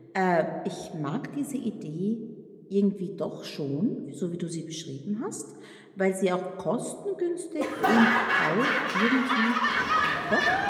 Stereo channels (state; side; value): identical; both; correlation 1.00